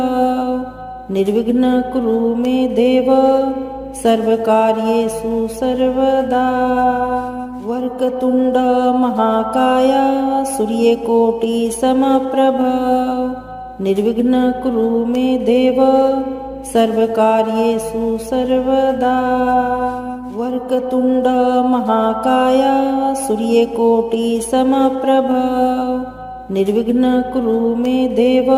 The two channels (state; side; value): identical; both; correlation 1.00